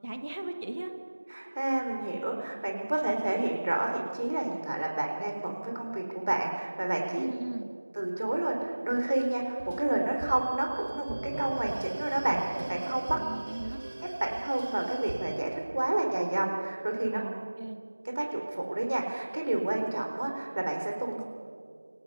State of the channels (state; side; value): inverted; both; correlation -1.00